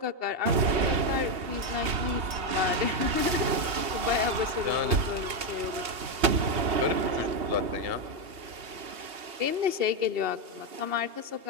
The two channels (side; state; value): left; late; 2.8 ms